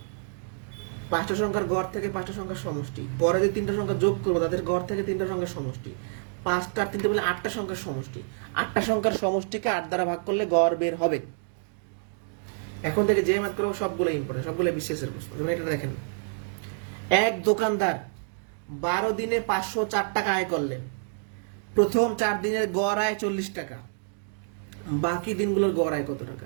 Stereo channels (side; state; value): left; silent; digital silence